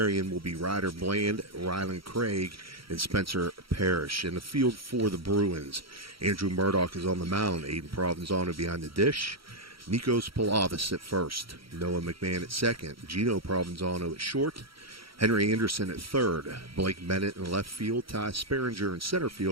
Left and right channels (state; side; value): late; left; 0.75 ms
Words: will be Ryder Bland, Rylan Craig, and Spencer Parrish. In the field for the Bruins, Andrew Murdoch is on the mound. Aiden Provenzano behind the dish. Nikos Palavis at first. Noah McMahon at second. Gino Provenzano at short. Henry Anderson at third. Blake Bennett in left field. Ty Sperringer in center